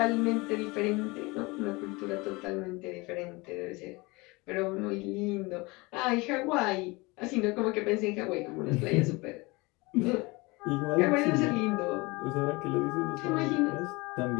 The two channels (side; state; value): right; quieter; 24.7 dB